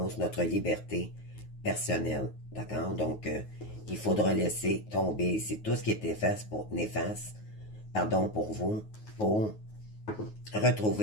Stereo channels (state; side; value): late; right; 9.4 ms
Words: notre liberté personnelle, d'accord? Donc, il faudra laisser tomber ici tout ce qui est néfaste pour vous, pour